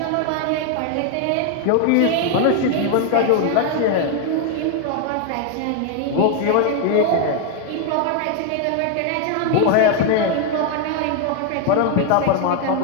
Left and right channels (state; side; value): different; both; correlation 0.01